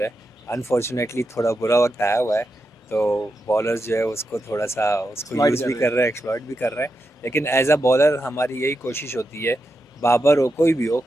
है। अनफॉर्चुनेटली थोड़ा बुरा वक्त आया हुआ है, तो बॉलर्स जो है उसको थोड़ा सा उसको एक्सप्लॉइट यूज़ कर भी रहे हैं। कर रहे हैं, एक्सप्लॉइट भी कर रहे हैं। लेकिन एज अ बॉलर हमारी यही कोशिश होती है, बाबर हो कोई भी हो,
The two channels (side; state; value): both; normal; correlation 0.87